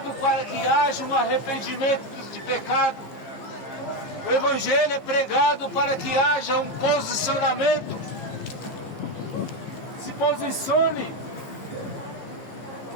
para que haja um arrependimento de pecado. O Evangelho é pregado para que haja um posicionamento. Se posicione,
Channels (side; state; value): right; late; 15 ms